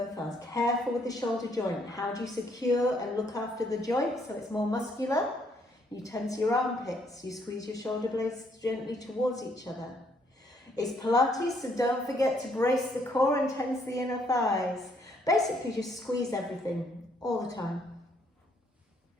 arms. Careful with the shoulder joint. How do you secure and look after the joint so it's more muscular? You tense your armpits. You squeeze your shoulder blades gently towards each other. It's Pilates, so don't forget to brace the core and tense the inner thighs. Basically, just squeeze everything all the time.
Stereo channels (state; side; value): normal; both; correlation 0.69